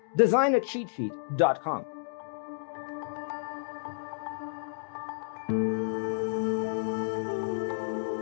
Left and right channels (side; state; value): right; silent; digital silence